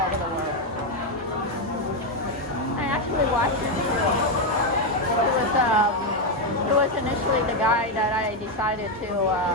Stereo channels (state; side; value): normal; both; correlation 0.05